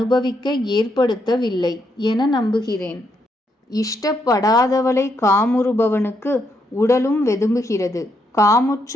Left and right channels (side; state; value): both; normal; correlation 0.77